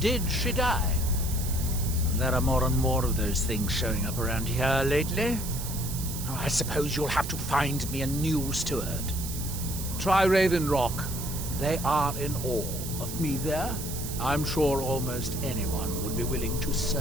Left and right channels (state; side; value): noise; right; hiss, 8 dB below the sound